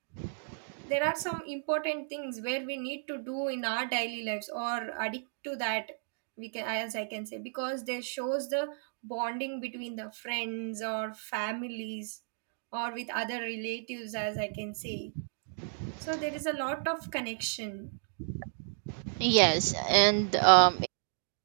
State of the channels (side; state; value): left; silent; digital silence